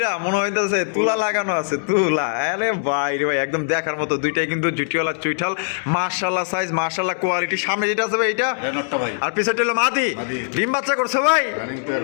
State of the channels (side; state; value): right; silent; 65 dB below the other